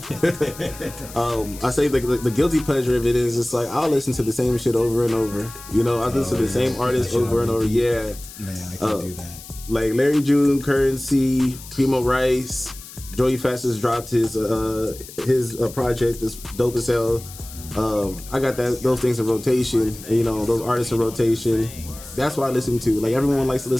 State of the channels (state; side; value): noise; left; hiss, 16 dB below the sound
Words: I say the guilty pleasure of it is just like I'll listen to the same shit over and over. I listen to the same artist over and over. Yeah. Man, I can't do that. Like Larry June, Currency, Primo Rice, Joey Fast dropped his project. It's dope as hell. I got those things in rotation, those artists in rotation. That's what I listen to. Like everyone likes to